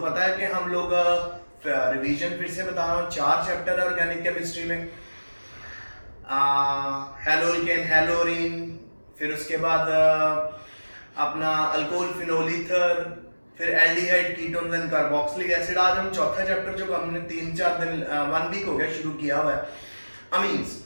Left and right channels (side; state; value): both; inverted; correlation -1.00